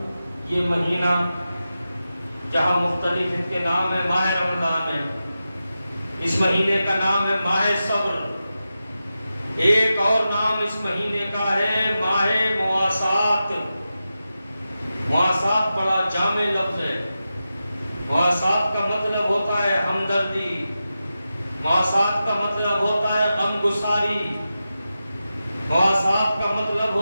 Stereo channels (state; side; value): inverted; both; correlation -0.91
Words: یہ مہینہ جہاں مختلف ان کے نام ہے، ماہ رمضان ہے، اس مہینے کا نام ہے ماہ صبر، ایک اور نام اس مہینے کا ہے ماہ مواسات۔ مواسات بڑا جامع لفظ ہے۔ مواسات کا مطلب ہوتا ہے ہمدردی، مواسات کا مطلب ہوتا ہے غمگساری، مواسات کا مطلب